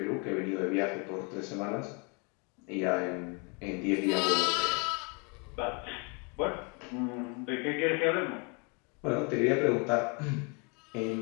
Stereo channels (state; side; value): quieter; right; 33.3 dB